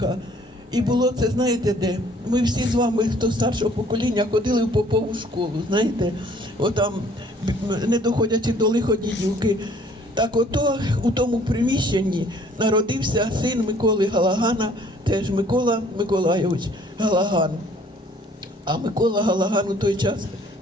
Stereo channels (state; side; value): normal; both; correlation 0.58